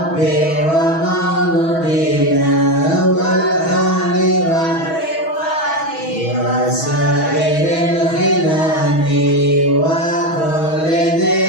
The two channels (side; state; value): right; late; 6.2 ms